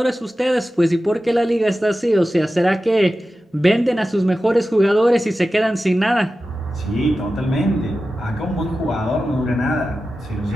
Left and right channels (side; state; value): both; normal; correlation 0.93